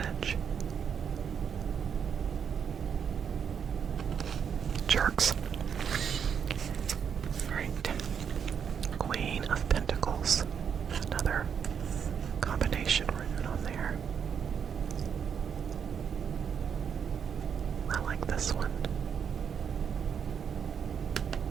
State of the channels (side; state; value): left; quieter; 7.4 dB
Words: Jerks. Alright. Queen of Pentacles. Another combination rune on there. I like this one.